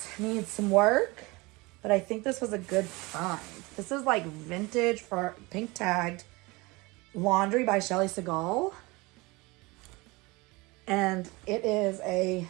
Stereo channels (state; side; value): quieter; left; 24.0 dB